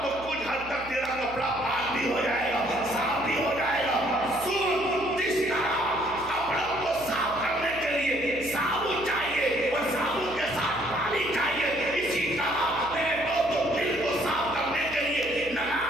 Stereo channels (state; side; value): noise; right; hum, 17 dB below the sound